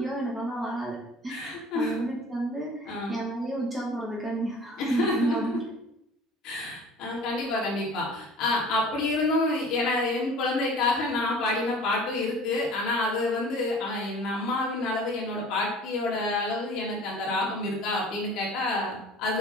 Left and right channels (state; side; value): normal; both; correlation 0.44